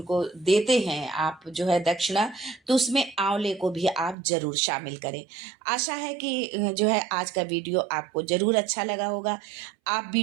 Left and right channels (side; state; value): left; drops out; at 4.2 s